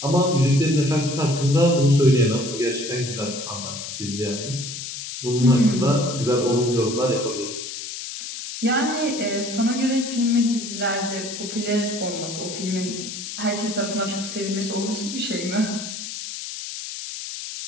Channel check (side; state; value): left; noise; hiss, 8 dB below the sound